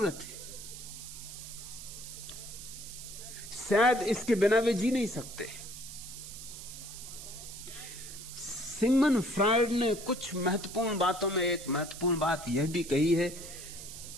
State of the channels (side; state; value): right; noise; hiss, 12 dB below the sound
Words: है, शायद इसके बिना वे जी नहीं सकते। सिगमंड फ्रायड ने कुछ महत्वपूर्ण बातों में एक महत्वपूर्ण बात यह भी कही है